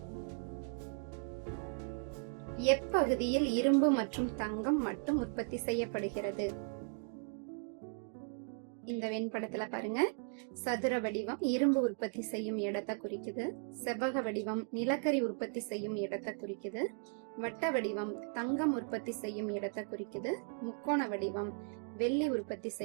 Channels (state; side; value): silent; left; 53 dB below the other